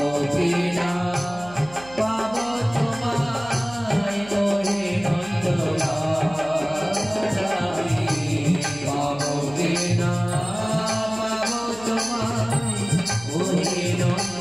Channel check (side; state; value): right; noise; hum, 20 dB below the sound